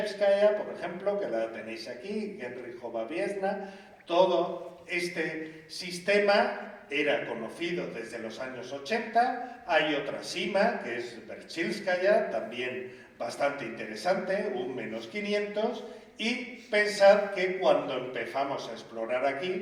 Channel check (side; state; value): both; identical; correlation 1.00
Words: por ejemplo, que la tenéis aquí, Genrichova Biesna. Todo este sistema era conocido desde los años 80, hay otra cima que es Berchilskaya, también bastante interesante, un -500, y pensad que cuando empezamos a explorar